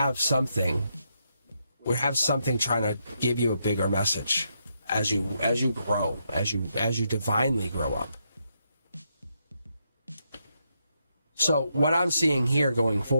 something. We have something trying to give you a bigger message as you grow, as you divinely grow up. So what I'm seeing here going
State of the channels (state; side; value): inverted; both; correlation -0.80